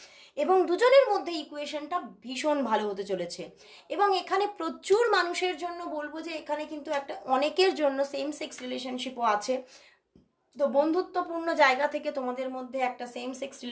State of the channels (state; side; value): identical; both; correlation 1.00